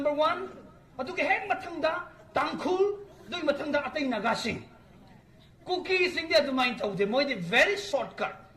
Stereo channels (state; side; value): identical; both; correlation 1.00